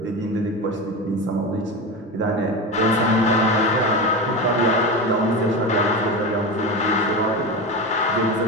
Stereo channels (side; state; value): both; normal; correlation 0.22